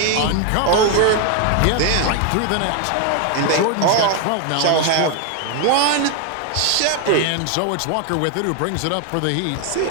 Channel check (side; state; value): both; different; correlation 0.01